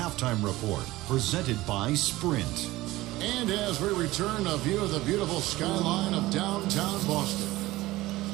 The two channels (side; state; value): left; quieter; 18.1 dB